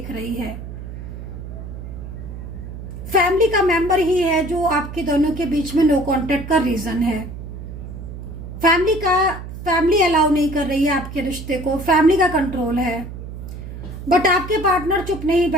रही है। फैमिली का मेंबर ही है जो आपके दोनों के बीच में नो कॉन्टेक्ट का रीजन है। फैमिली अलाउ नहीं कर रही है आपके रिश्ते को, फैमिली का कंट्रोल है। बट आपके पार्टनर चुप नहीं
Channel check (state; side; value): noise; right; hum, 10 dB below the sound